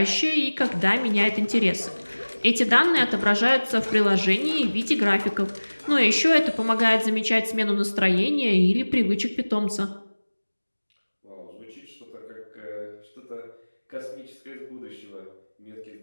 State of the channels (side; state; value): both; inverted; correlation -1.00